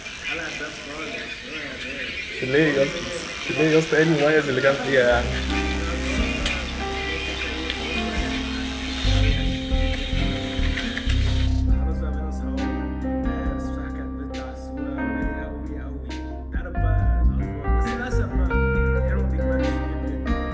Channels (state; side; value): identical; both; correlation 1.00